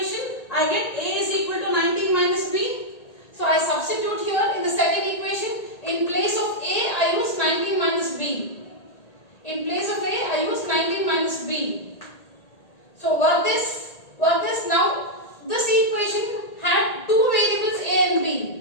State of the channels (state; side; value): late; right; 1.8 ms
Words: I get A is equal to 19 minus B. So I substitute here in the second equation. In place of A, I use 19 minus B. In place of A, I use 19 minus B. So work this now. This equation had two variables A and